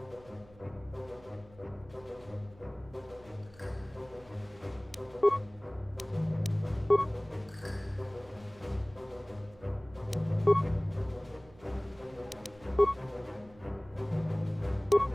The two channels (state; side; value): noise; right; hum, 24 dB below the sound